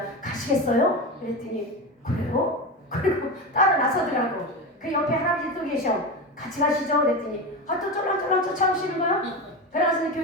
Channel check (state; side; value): normal; both; correlation 0.21